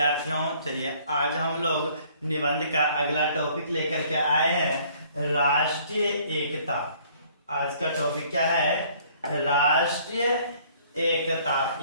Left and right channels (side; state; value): both; inverted; correlation -0.58